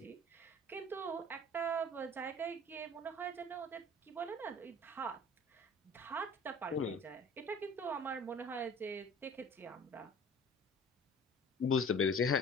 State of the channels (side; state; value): both; normal; correlation 0.45